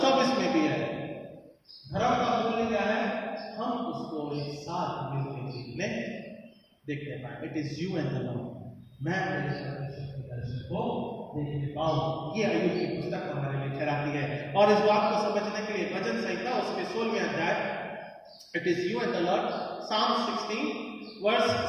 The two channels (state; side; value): identical; both; correlation 1.00